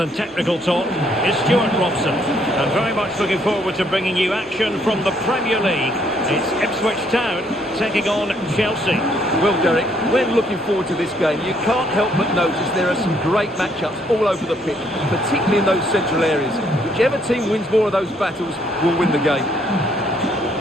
technical talk, is Stuart Robson. I'm very much looking forward to bringing you action from the Premier League. It's Ipswich Town taking on Chelsea. Well, Derek, we're looking forward to this game. You can't help but notice there are some great matchups all over the pitch, particularly in those central areas. Whichever team wins more of those battles will win the game.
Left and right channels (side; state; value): both; normal; correlation 0.68